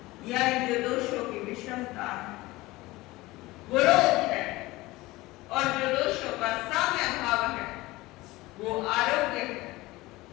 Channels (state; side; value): quieter; right; 19.8 dB